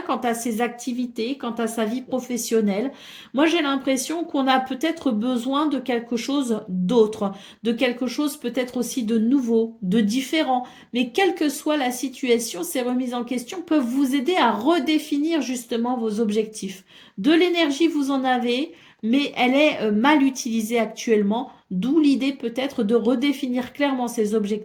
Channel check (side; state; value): both; identical; correlation 1.00